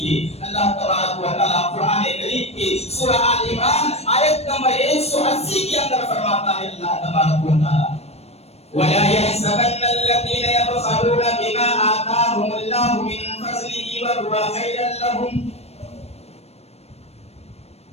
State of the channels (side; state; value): right; late; 0.31 ms